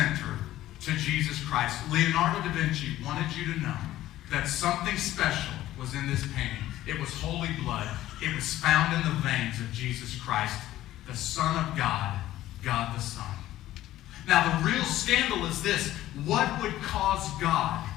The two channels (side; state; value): right; quieter; 14.4 dB